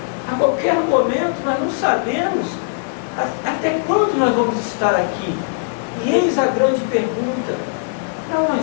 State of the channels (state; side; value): silent; right; digital silence